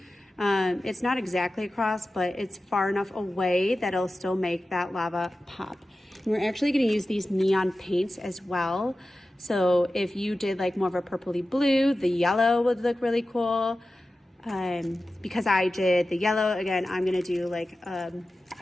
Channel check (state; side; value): normal; both; correlation 0.94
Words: It's not exactly across, but it's far enough away that it'll still make that lava pop. And we're actually going to use these neon paints as well. So if you did like more of a purpley blue, the yellow would look really cool. Because I did the yellow, again, I'm going to do like a